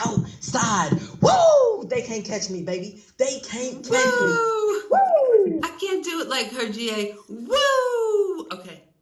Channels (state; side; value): identical; both; correlation 1.00